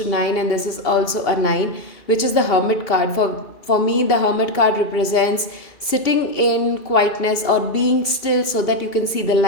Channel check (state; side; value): late; right; 2.7 ms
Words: 9, and this is also a 9, which is the Hermit card. For me, the Hermit card represents sitting in quietness or being still so that you can see the